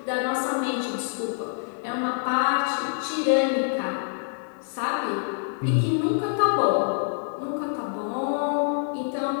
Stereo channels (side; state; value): right; silent; digital silence